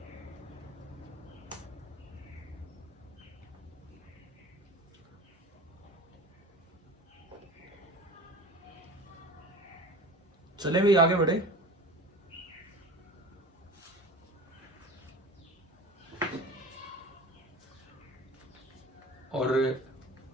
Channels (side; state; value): both; normal; correlation 0.37